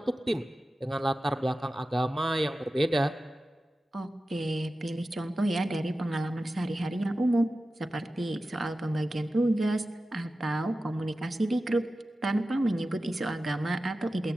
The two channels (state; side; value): normal; both; correlation 0.94